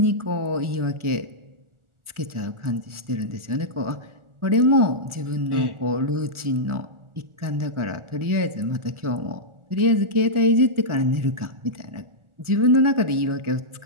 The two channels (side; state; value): left; late; 1.4 ms